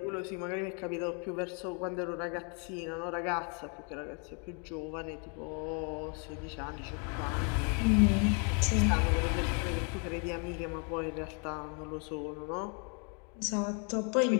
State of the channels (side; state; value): right; quieter; 38.1 dB